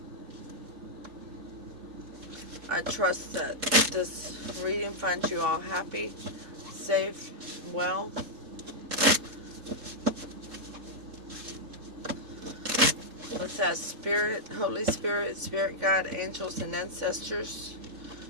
I trust that this reading finds you all happy, safe, well. Let's ask Spirit, Holy Spirit, Spirit Guide, angels, and ancestors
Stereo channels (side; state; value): left; late; 3.7 ms